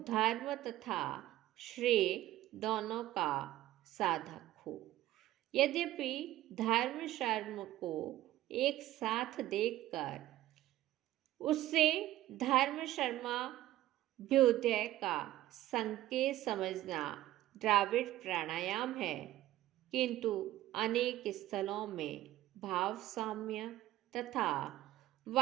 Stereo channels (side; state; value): left; quieter; 14.8 dB